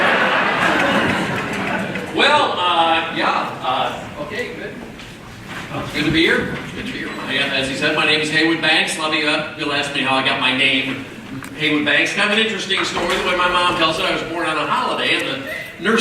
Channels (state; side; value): identical; both; correlation 1.00